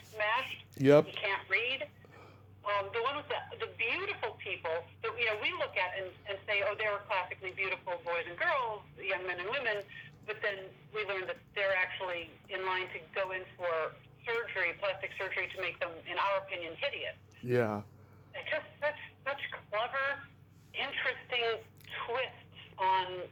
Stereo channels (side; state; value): both; identical; correlation 1.00